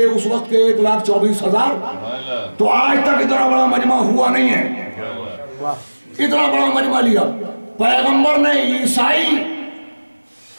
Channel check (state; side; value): inverted; both; correlation -1.00